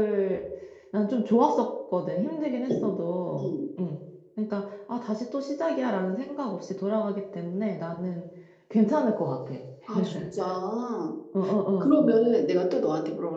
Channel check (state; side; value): identical; both; correlation 1.00